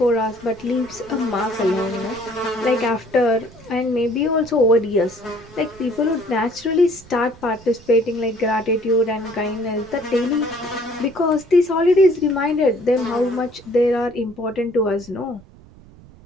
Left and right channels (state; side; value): noise; right; rumble, 23 dB below the sound